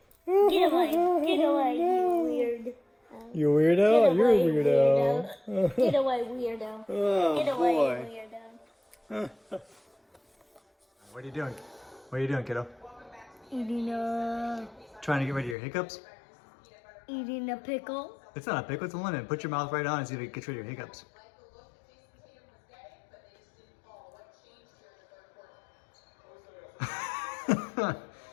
Get away. Get away, you weird. You weirdo? Get You're a away, weirdo. Get away, weirdo. Oh Get away, boy. weirdo. What are you doing? What are you doing, kiddo? Eating a Trying to get rid of your hiccups? pickle. It's not a pickle, it's a lemon. Put your mouth right on and see if it gets rid of your hiccups.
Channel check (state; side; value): drops out; right; at 15.6 s